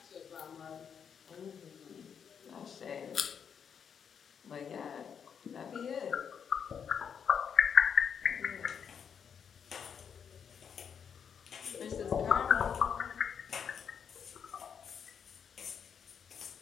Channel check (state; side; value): quieter; right; 7.3 dB